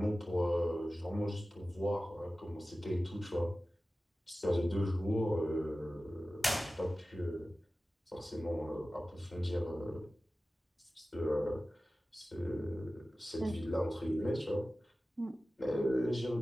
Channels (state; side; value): normal; both; correlation 0.96